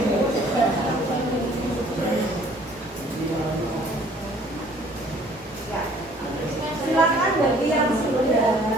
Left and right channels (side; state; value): both; normal; correlation 0.56